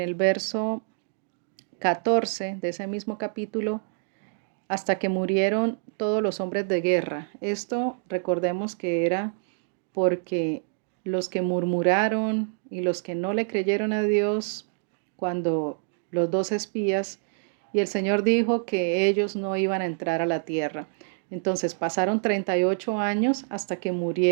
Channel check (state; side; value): silent; left; digital silence